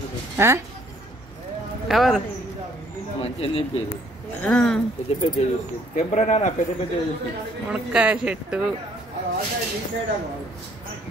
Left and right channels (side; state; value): both; normal; correlation 0.63